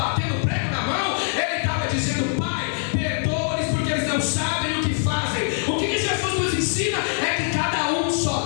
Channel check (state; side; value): silent; right; 63 dB below the other